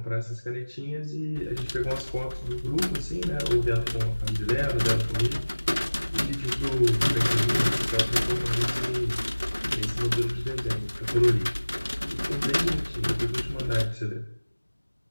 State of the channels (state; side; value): inverted; both; correlation -1.00